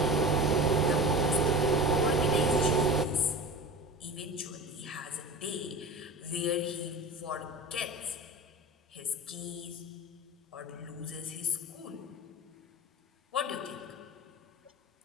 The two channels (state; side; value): normal; both; correlation 0.32